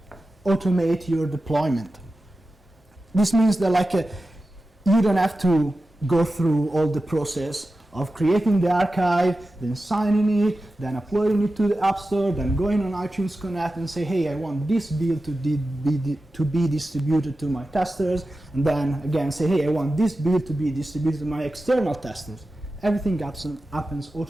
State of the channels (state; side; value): normal; both; correlation 0.93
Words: automate your deployment. This means that you don't have to go through all the process of creating the archive, then signing it, then uploading it to the App Store, then going on iTunes Connect and say, hey, I want this build to be distributed to my testers, and then again say, hey, I want this build to be distributed to my external testers. Everything happens